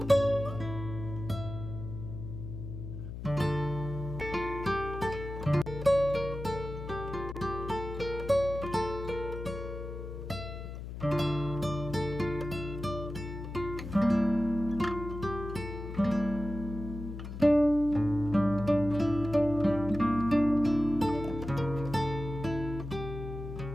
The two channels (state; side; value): noise; left; hum, 8 dB below the sound